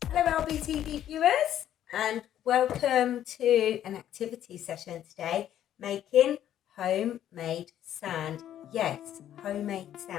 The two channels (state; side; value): quieter; right; 11.2 dB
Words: Hello AlbyTV viewers, and welcome to an activity session today, making homemade sand. Yes, homemade